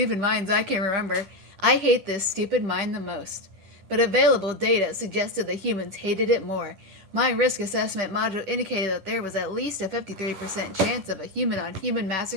mines I can remember, I hate this stupid mine the most. But available data suggested the humans hated it more. My risk assessment module indicated that there was at least a 53% chance of a human-on-human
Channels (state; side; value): late; left; 10 ms